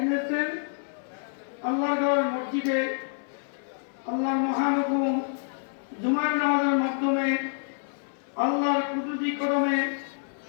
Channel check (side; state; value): right; silent; 59 dB below the other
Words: আল্লাহর ঘর মসজিদে আল্লাহর মহানুভব জুমার নামাজের মাধ্যমে আল্লাহর কুদরতি কদমে